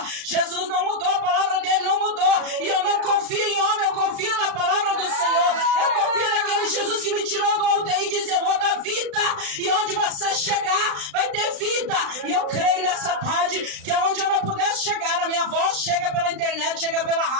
Jesus não mudou, a palavra dele não mudou. E eu não confio em homem, eu confio na palavra do Senhor. Eu confio naquele Jesus que me tirou do UTI e disse, eu vou dar vida. E onde você chegar, vai ter vida. E eu creio nessa tarde que onde eu não pudesse chegar, a minha voz chega pela internet, chega pela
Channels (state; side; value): late; left; 36 ms